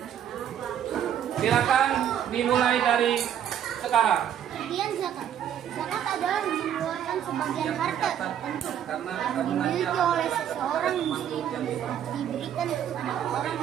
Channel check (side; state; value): left; quieter; 9.8 dB